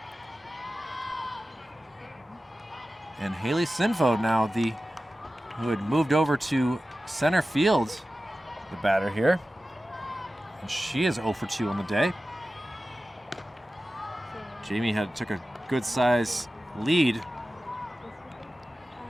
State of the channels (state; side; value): normal; both; correlation 0.95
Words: And Haley Sinfo now, who had moved over to center field, the batter here. And she is 0 for 2 on the day. Jamie took a good size lead.